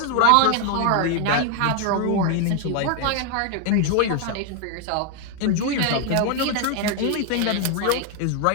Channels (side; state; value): both; different; correlation 0.01